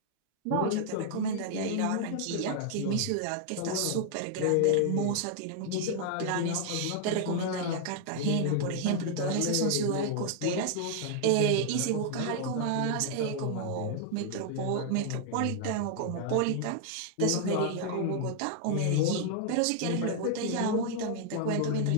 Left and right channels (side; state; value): both; different; correlation 0.00